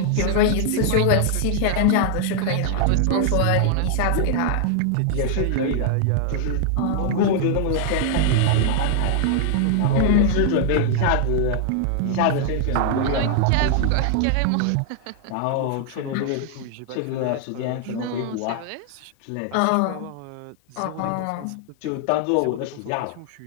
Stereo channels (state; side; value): different; both; correlation 0.00